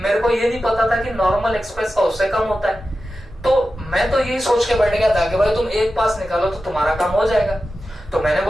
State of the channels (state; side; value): normal; both; correlation 0.92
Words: को ये नहीं पता था कि नॉर्मल एक्सप्रेस का उससे कम होता है। तो मैं तो यही सोच के बैठ गया था कि भाई तुम एक पास निकालो तो तुम्हारा काम हो जाएगा। तो मैंने